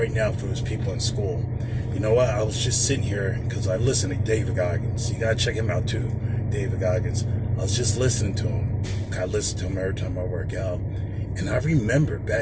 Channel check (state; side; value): identical; both; correlation 1.00